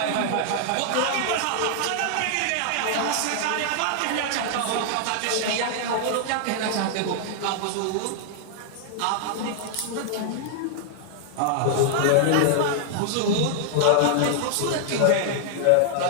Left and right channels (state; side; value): different; both; correlation -0.01